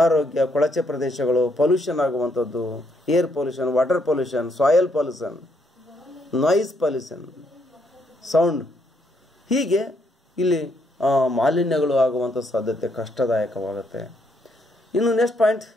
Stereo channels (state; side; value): normal; both; correlation 0.73